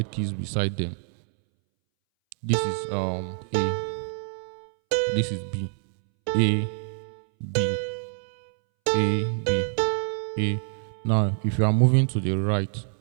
keys beside them. This is A. This is B. A, B, A, B, A. Now, if you are moving to the right,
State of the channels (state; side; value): silent; left; 61 dB below the other